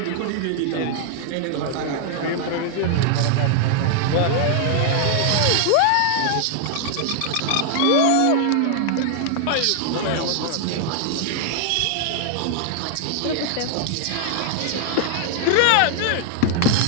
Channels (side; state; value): both; different; correlation 0.00